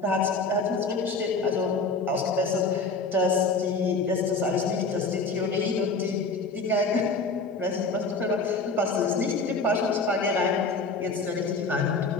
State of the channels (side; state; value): right; quieter; 3.9 dB